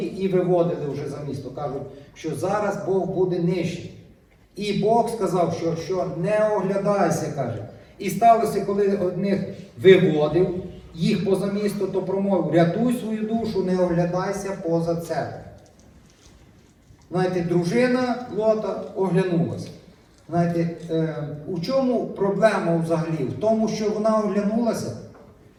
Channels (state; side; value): identical; both; correlation 1.00